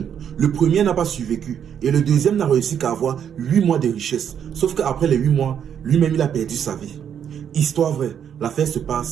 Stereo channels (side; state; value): left; quieter; 8.6 dB